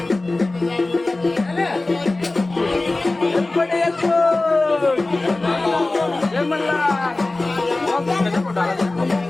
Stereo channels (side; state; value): right; quieter; 3.0 dB